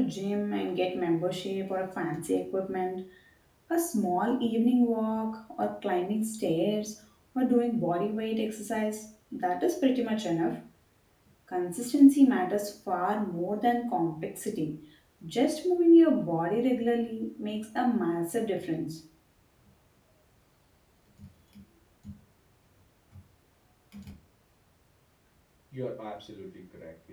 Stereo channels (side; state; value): both; identical; correlation 1.00